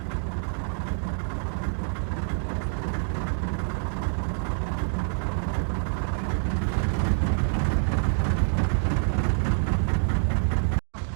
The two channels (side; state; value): left; silent; digital silence